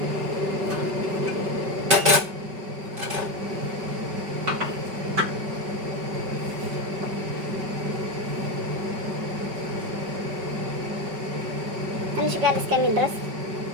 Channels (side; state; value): left; late; 5.2 ms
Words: ትንሽ ጋር እስከሚል ድረስ